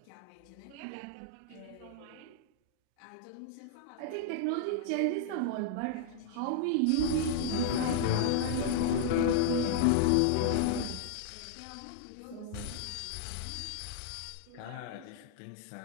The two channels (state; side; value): different; both; correlation -0.01